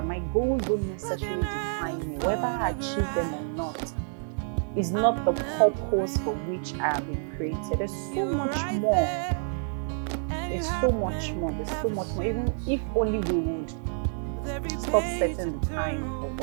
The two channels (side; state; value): left; silent; 59 dB below the other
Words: my goals don't necessarily define me. Whether I achieve them or not is not the purpose for which I have been created. There's so much more. There's so much more. Even if only we would stop setting the time for